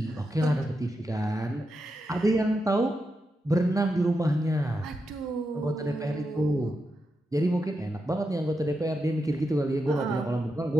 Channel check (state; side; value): normal; both; correlation 0.86